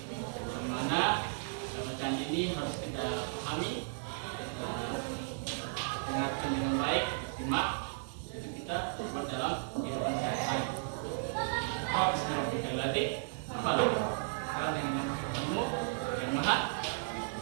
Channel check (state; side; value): silent; left; digital silence